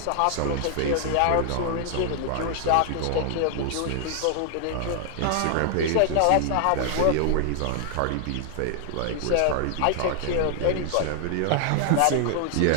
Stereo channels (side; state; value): both; different; correlation 0.00